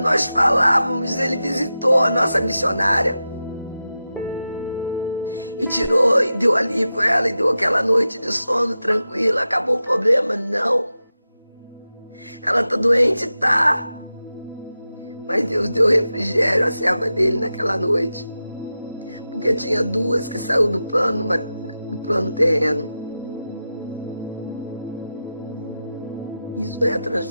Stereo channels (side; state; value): both; inverted; correlation -0.92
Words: falávamos, Ele visitou a nossa missionária e tirou e deu alívio a ela e deu aquela noite de sono tranquila. Acabou o problema? Não. Ela está doente? Tá. Mas Deus deu refrigério à serva dele naquela noite, porque tinha 2 que saiu do plano terreno. Isso é a